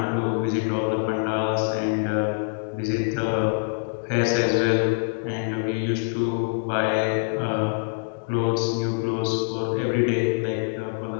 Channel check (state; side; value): silent; right; digital silence